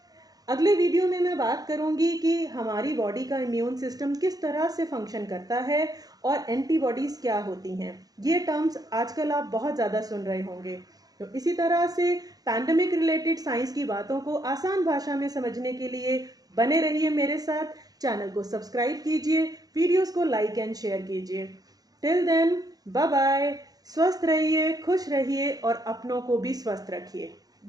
अगले वीडियो में मैं बात करूंगी कि हमारी बॉडी का इम्यून सिस्टम किस तरह से फंक्शन करता है और एंटीबॉडीज क्या होती हैं। ये टर्म्स आजकल आप बहुत ज़्यादा सुन रहे होंगे। तो इसी तरह से पैंडेमिक रिलेटेड साइंस की बातों को आसान भाषा में समझने के लिए बने रहिए मेरे साथ। चैनल को सब्सक्राइब कीजिए, वीडियोस को लाइक एंड शेयर कीजिए। Till then, bye bye. स्वस्थ रहिए, खुश रहिए और अपनों को भी स्वस्थ रखिए।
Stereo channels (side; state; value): left; late; 0.18 ms